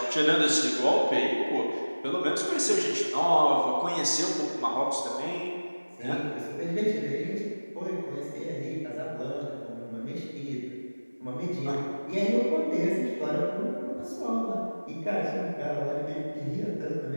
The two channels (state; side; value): inverted; both; correlation -1.00